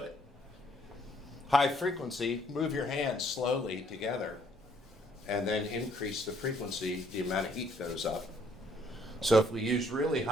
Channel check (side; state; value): both; normal; correlation 0.65